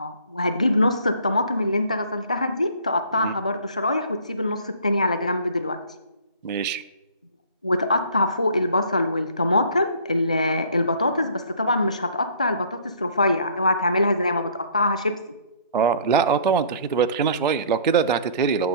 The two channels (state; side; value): inverted; both; correlation -0.52